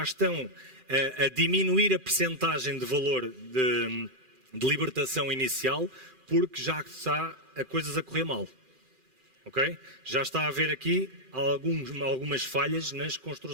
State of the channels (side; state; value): left; late; 2.4 ms